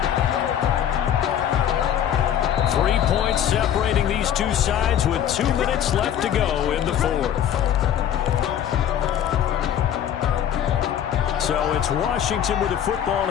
Three points separating these two sides with 2 minutes left to go in the fourth. So it's Washington with the football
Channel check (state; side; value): quieter; right; 9.9 dB